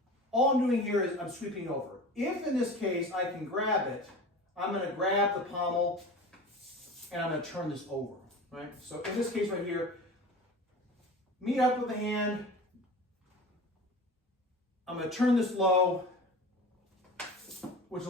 all I'm doing here is I'm sweeping over. If in this case I can grab it, I'm going to grab the pommel and I'm going to turn this over, right? So in this case right here, meet up with the hand, I'm going to turn this low, which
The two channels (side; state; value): both; normal; correlation 0.35